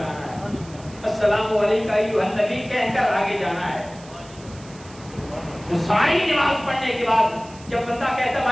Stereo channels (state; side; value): noise; right; hiss, 22 dB below the sound